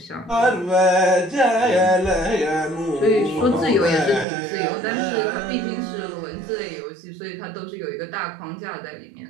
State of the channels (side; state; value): left; drops out; at 4.2 s